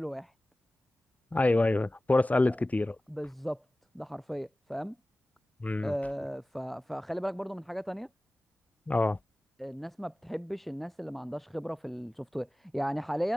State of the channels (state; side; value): normal; both; correlation 0.97